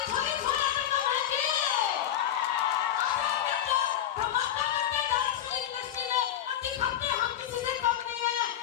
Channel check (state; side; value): quieter; right; 10.8 dB